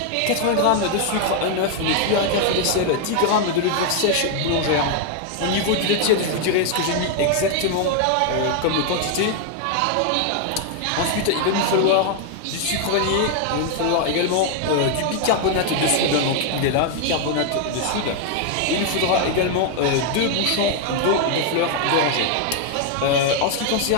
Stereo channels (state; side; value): different; both; correlation 0.00